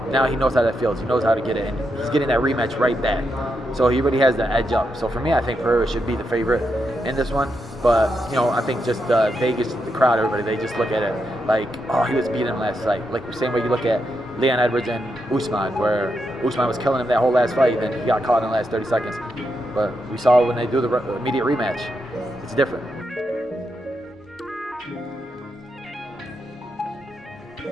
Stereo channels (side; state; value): both; normal; correlation 0.83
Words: now he knows how that feels. He knows how to get it, and he's getting that rematch right back. So he really has the edge up. So for me, I think Pereira should be the favorite in this one. But, you know, I think just Vegas, the crowd, everybody, they just look at it like, oh, he was beating him last fight. Like the same way you look at Leon Edwards and Usman, where Usman was killing him that whole last fight, then he got caught in the last 30 seconds. But we saw when they do the immediate rematch, it's different.